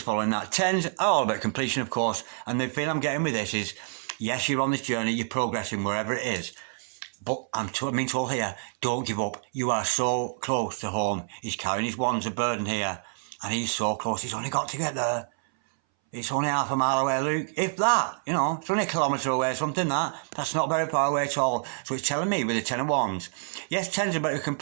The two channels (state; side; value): silent; left; 60 dB below the other